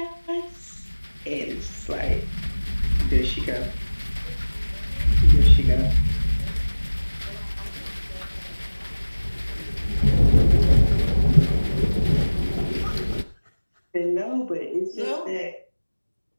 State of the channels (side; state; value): both; inverted; correlation -1.00